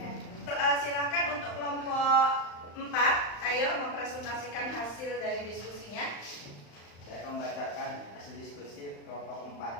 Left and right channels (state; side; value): late; right; 35 ms